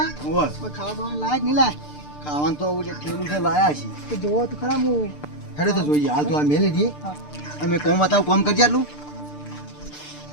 ઓય. કોઈ ખાવાનું લાયક નહીં લાય. ખાવાનું તો ઓલે થેલું છે લાયા છે. તો જોવો તો ખરા હું. હેડો તો જોઈએ. હાલ તો આ મેલી દઈએ. અમે કોમ બતાવું કોમ કરજે આટલું.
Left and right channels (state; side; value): late; right; 6.7 ms